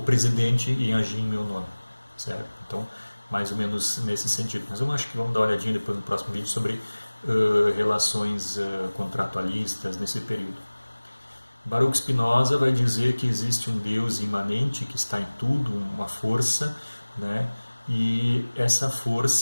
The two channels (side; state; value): both; inverted; correlation -1.00